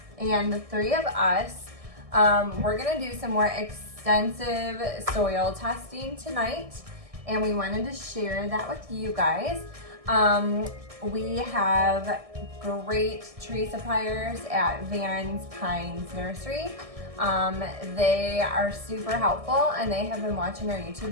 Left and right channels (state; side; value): late; left; 1.6 ms